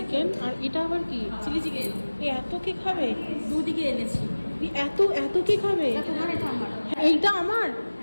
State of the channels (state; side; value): inverted; both; correlation -1.00